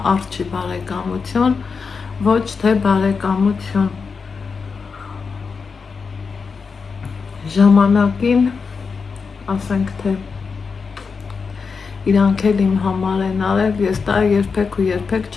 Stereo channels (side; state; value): right; quieter; 5.2 dB